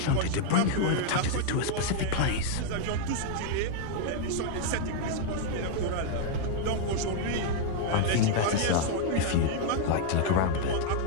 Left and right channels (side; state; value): both; different; correlation 0.00